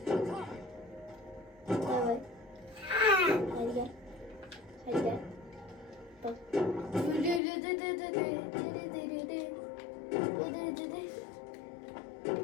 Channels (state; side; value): drops out; right; at 7.4 s